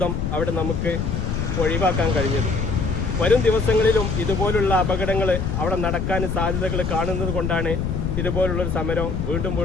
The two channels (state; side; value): noise; left; rumble, 1 dB below the sound